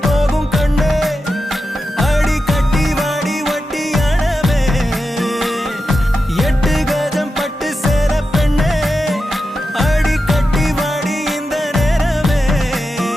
போகும் கண்ணே அடி கட்டி வாடி ஒட்டி அணவே எட்டு கஜம் பட்டு சேர பெண்ணே அடி கட்டி வாடி இந்த நேரமே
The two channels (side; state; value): both; normal; correlation 0.90